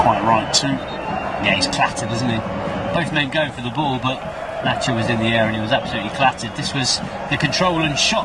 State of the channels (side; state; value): both; identical; correlation 1.00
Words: right too. Yeah, he's clattered, isn't he? Both men go for the ball, but Nacho was in the air and he was absolutely clattered. This was the control and